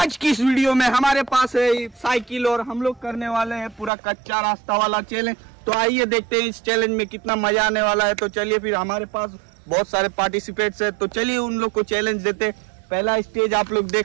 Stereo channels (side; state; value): left; drops out; at 3.9 s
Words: की इस वीडियो में हमारे पास है साइकिल और हम लोग करने वाले हैं पूरा कच्चा रास्ता वाला चैलेंज। तो आइए देखते हैं इस चैलेंज में कितना मजा आने वाला है। तो चलिए फिर हमारे पास बहुत सारे पार्टिसिपेट्स हैं, तो चलिए उन लोग को चैलेंज देते हैं। पहला स्टेज आप लोग